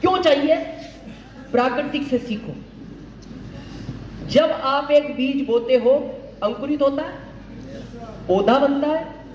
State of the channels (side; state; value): both; identical; correlation 1.00